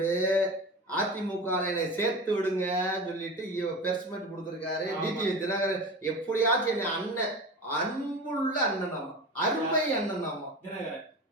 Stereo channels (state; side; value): normal; both; correlation 0.30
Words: அதிமுக சேர்த்து விடுங்க சொல்லிட்டு பெர்ஸ்மெண்ட் கொடுத்திருக்காரு. டிடிவி தினகரன் எப்படியாச்சும் என்ன அண்ணன், அன்புள்ள அண்ணனாமா, அருமை அண்ணனாமா தினகரன்.